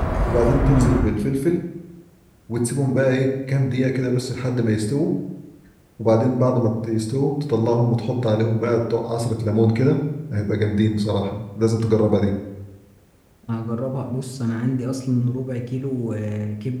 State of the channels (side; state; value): both; identical; correlation 1.00